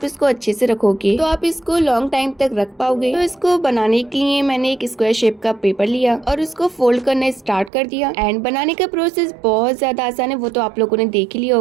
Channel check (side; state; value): left; drops out; at 7.7 s